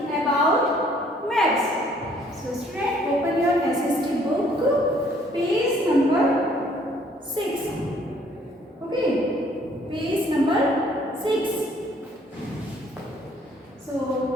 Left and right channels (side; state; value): both; normal; correlation 0.61